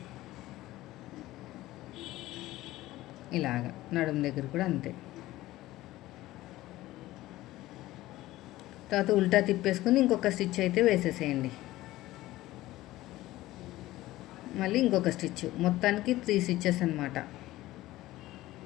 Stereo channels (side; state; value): right; quieter; 16.6 dB